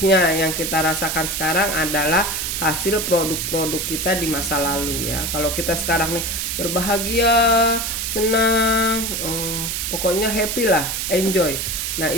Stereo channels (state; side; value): noise; right; hiss, 2 dB below the sound